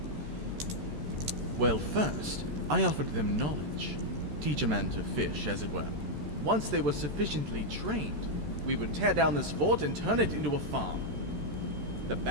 Well, first, I offered them knowledge. Teach a man to fish, as it were. Once they were sufficiently trained, we would tear down this fort and turn it into a farm. The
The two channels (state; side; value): late; left; 13 ms